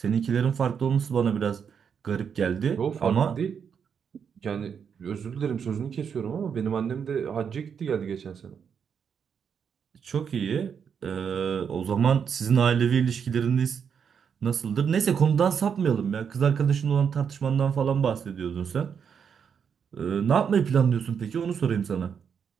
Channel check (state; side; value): quieter; left; 7.1 dB